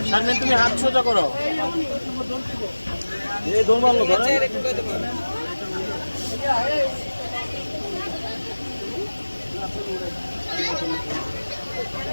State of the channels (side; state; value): both; inverted; correlation -1.00